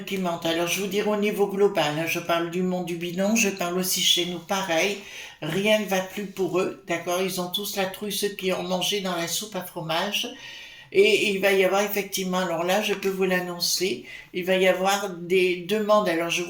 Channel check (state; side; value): identical; both; correlation 1.00